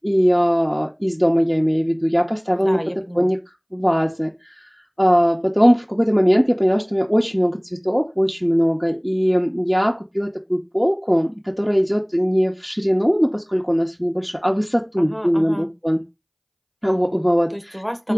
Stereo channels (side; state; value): both; identical; correlation 1.00